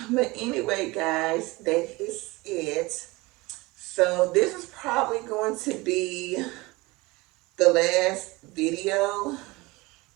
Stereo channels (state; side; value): quieter; left; 22.6 dB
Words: But anyway, guys, that is it. So this is probably going to be the last video